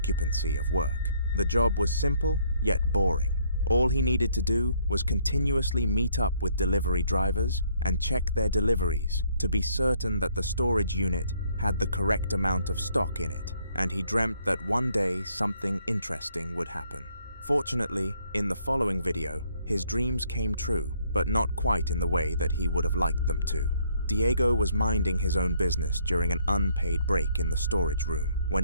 of work. The job was simple, yet boring. All he needed to do was continuously meet up with delivery drivers and check their deliveries to be certain that the storage unit had the correct amount of stock in it, and he dreamt that one day something interesting would happen. Fortunately, in the following video, his dreams came true, but not quite in the way that he would have liked them to. Diego was minding his own business during an unpaid break in the storage room when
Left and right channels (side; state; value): both; inverted; correlation -0.67